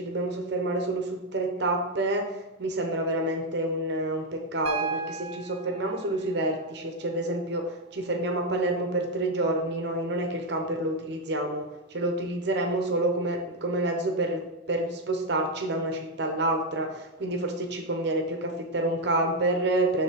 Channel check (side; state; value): both; normal; correlation 0.04